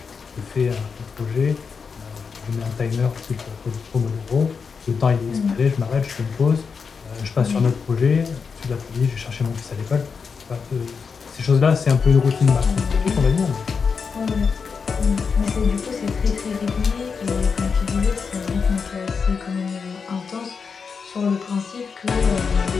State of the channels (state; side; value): quieter; right; 5.6 dB